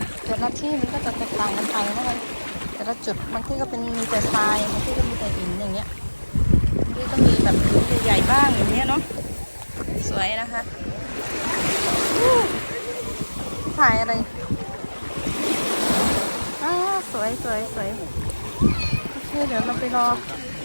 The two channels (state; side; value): inverted; both; correlation -1.00